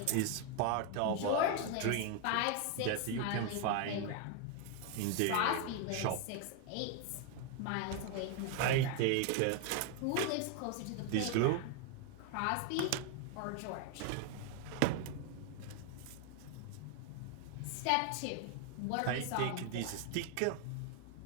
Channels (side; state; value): both; different; correlation 0.01